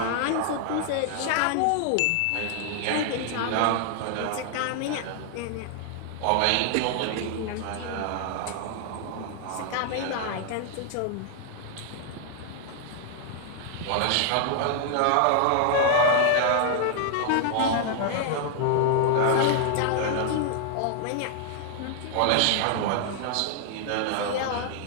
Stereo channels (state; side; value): different; both; correlation 0.00